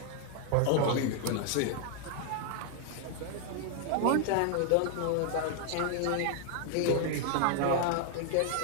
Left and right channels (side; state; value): both; different; correlation 0.00